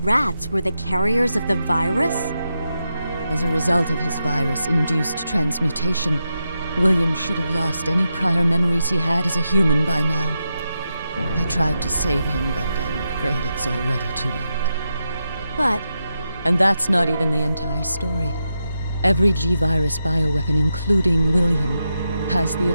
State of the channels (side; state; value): both; inverted; correlation -0.87